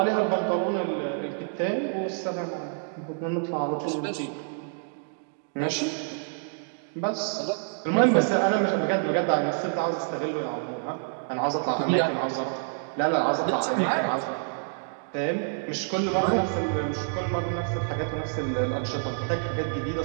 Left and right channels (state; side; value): silent; left; digital silence